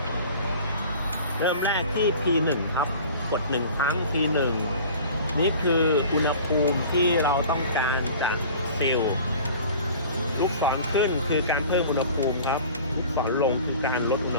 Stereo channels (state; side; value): inverted; both; correlation -0.43